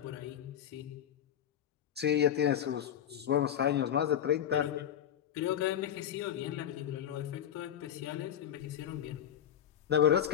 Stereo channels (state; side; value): quieter; right; 10.0 dB